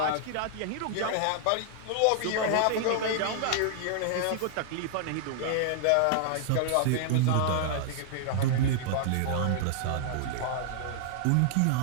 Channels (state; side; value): different; both; correlation -0.01